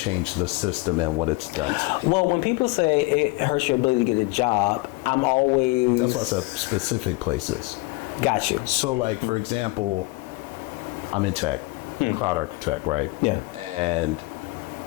the system and what it's done to people. Well, when people say it hurts your ability to get a job, I'm always. That's why I said specific places. Got you. So, like for example, I'm in tech, cloud architect, right? Yeah. And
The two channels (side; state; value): right; quieter; 23.4 dB